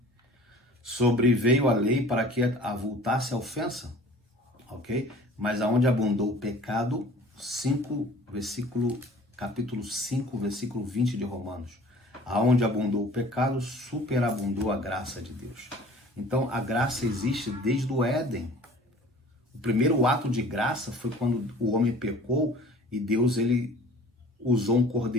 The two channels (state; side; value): normal; both; correlation 0.48